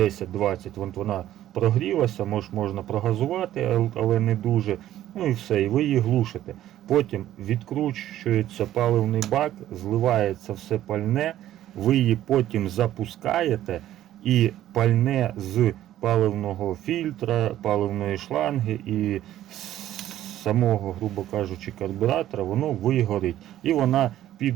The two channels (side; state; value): left; quieter; 12.9 dB